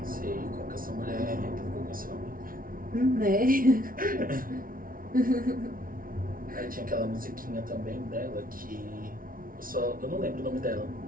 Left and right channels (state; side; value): late; left; 0.41 ms